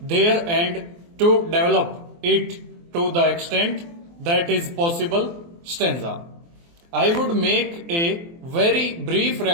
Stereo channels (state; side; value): late; left; 24 ms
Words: there and to develop it to the extent that is possible. Stanza. I would make a very brief